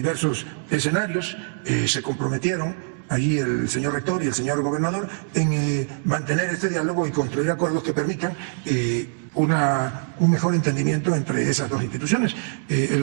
escenarios, se comprometieron ahí el señor rector y el señor gobernador en mantener este diálogo y construir acuerdos que permitan un mejor entendimiento entre esas dos instituciones.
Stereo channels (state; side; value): silent; left; 63 dB below the other